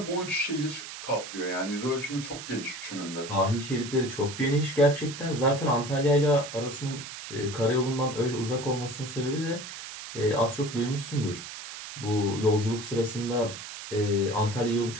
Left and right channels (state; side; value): noise; right; hiss, 10 dB below the sound